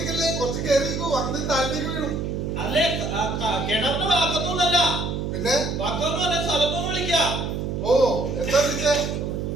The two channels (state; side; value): noise; right; hum, 3 dB below the sound